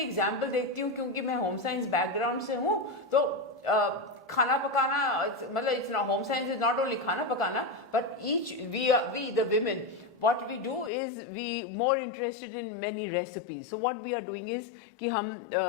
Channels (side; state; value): right; drops out; at 10.9 s